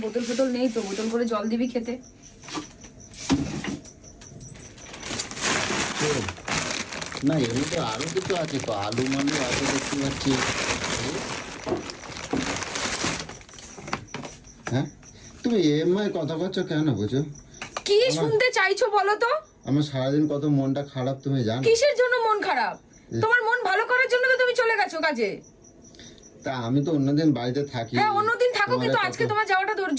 বোতল ফোতল নেই তো, বোতল করে জল দিবি খেতে। না এমনি তো আরো কিছু আছে তো, আলু মালু আছে দেখতে পাচ্ছি। হ্যাঁ তুমি এমআই কথা করছো কেন বুঝো? কি শুনতে চাইছো বলো তো? আমার সারাদিন কত মনটা খারাপ তুমি জানো? কিসের জন্য মন খারাপ? তোমার মন ভালো করার জন্য তো তুমি চলে গেছো কাজে। তা আমি তো অন্যদিন বাড়িতে থাকি। হ্যাঁ অন্যদিন থাকো, তোমার কিন্তু কত- আজকে তোমার যাওয়াটা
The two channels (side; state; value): both; identical; correlation 1.00